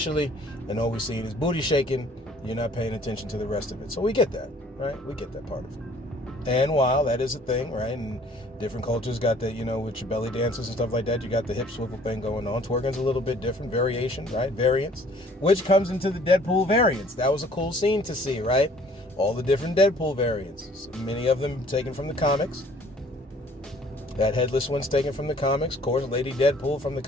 and all we're seeing is booty shaking, you're not paying attention to the rest of it. So we get that, right? We get that part of it. And while that is a thing, right, and different cultures got that, with your belly dances and stuff like that, you got the hip swivel thing going on. Twerking's a little bit different, variation, right, variance, which comes into the Deadpool variants. That was a cool scene to see, right? All the different Deadpool variants, many of them taken from the comics. That headless one's taken from the comics. Of course, Lady Deadpool from the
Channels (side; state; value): both; normal; correlation 0.56